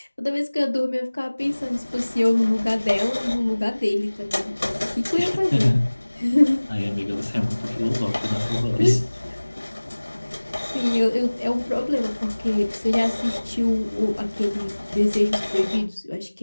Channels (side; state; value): both; inverted; correlation -1.00